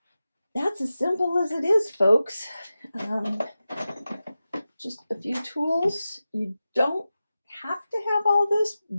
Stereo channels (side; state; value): both; inverted; correlation -0.94